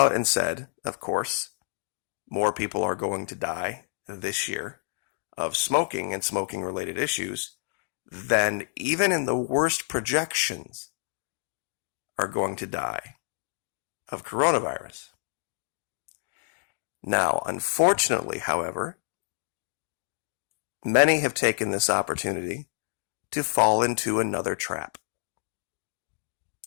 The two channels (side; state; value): right; silent; digital silence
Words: and said, of course, more people are going to die this year of smoking and smoking-related issues than even in the worst projections are going to die of coronavirus. Now, unfortunately, however, many have taken this opportunity to fall into another trap.